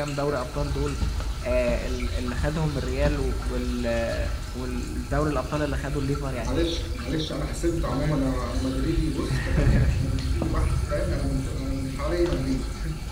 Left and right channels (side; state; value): both; identical; correlation 1.00